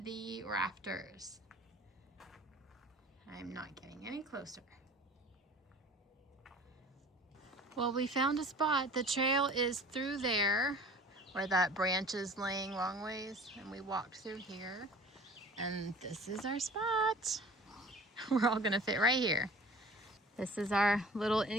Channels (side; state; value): both; normal; correlation 0.44